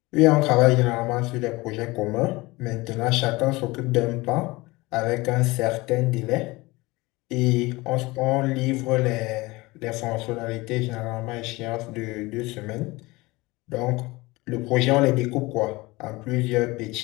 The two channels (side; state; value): right; quieter; 22.0 dB